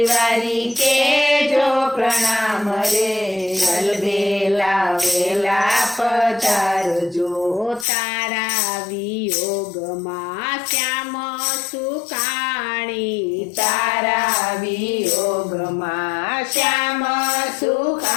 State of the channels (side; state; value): right; drops out; at 7.9 s